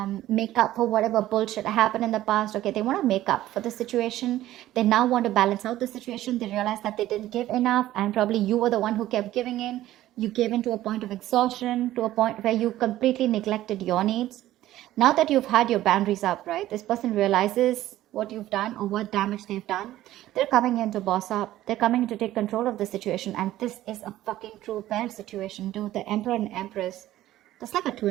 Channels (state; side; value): quieter; left; 14.4 dB